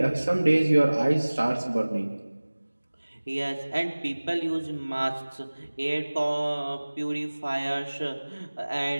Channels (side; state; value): both; inverted; correlation -1.00